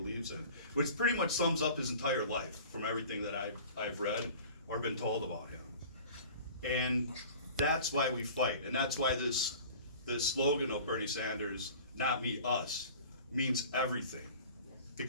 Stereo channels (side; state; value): both; inverted; correlation -0.43